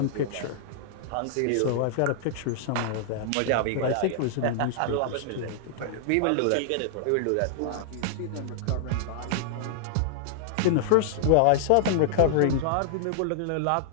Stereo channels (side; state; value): both; different; correlation -0.01